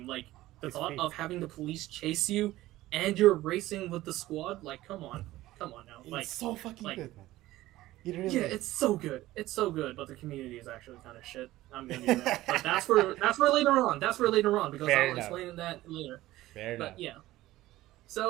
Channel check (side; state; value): left; quieter; 16.4 dB